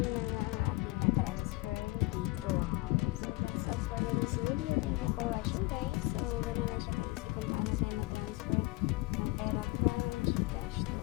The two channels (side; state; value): right; quieter; 22.2 dB